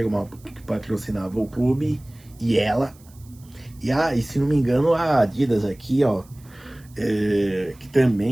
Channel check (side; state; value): right; noise; hiss, 28 dB below the sound